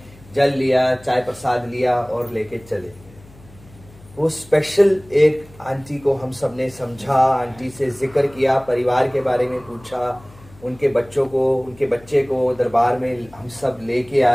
जल लिया, चाय प्रसाद लिया और लेके चले गए। वो स्पेशल एक आंटी को हम सब ने समझा, आंटी से जिक्र किया, परिवार के बारे में पूछा, उनके बच्चों को, उनके बच्चे को दरबार में हम सब लेके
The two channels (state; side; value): noise; left; hum, 23 dB below the sound